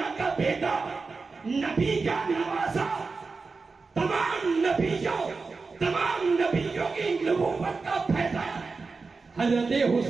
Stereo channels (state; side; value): quieter; left; 4.3 dB